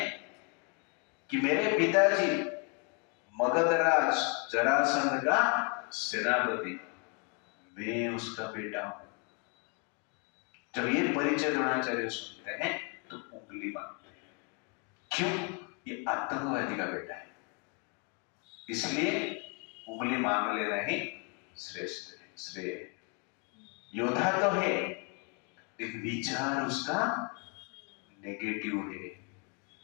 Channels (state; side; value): quieter; right; 35.5 dB